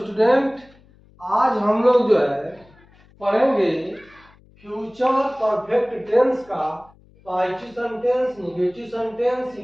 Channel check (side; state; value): left; noise; hum, 28 dB below the sound